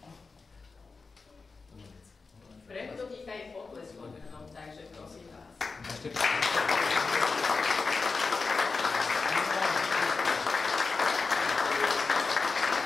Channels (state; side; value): quieter; right; 4.3 dB